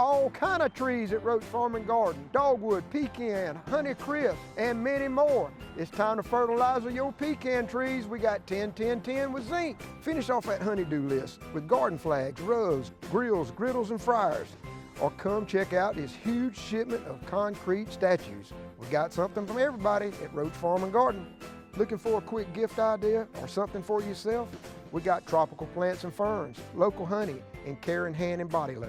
kind of trees at Roach Farm and Garden. Dogwood, pecan, honeycrisp, and many more. It's time to fertilize your pecan trees. We got 10-10-10 with zinc. Finish off that honeydew list with garden flags, rugs, grills, griddles, and fryers. Or come check out this huge shipment of concrete statues. We got something from everybody at Roach Farm and Garden. Looking for a quick gift idea or something for yourself? We got tropical plants and ferns, local honey, and care in hand and body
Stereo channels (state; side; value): identical; both; correlation 1.00